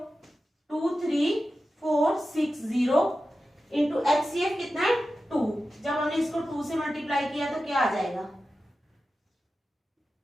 2 3 4 6 0 इंटू एचसीएफ कितना है? 2। जब हमने इसको 2 से मल्टीप्लाई किया तो क्या आ जाएगा?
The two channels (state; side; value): normal; both; correlation 0.93